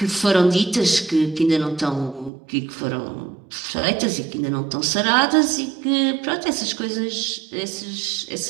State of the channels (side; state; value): left; drops out; at 2.3 s